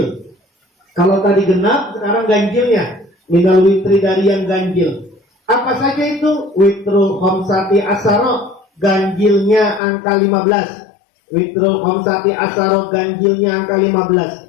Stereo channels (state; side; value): drops out; right; at 9.8 s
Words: Kalau tadi genap, sekarang ganjilnya. Minal witri, dari yang ganjil. Apa saja itu? Witrul khamsati asaro, ganjilnya angka 15. Witrul khamsati asaro, ganjilnya angka